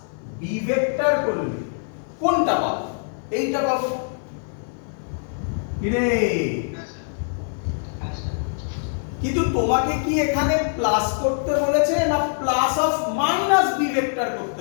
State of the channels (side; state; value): right; silent; 61 dB below the other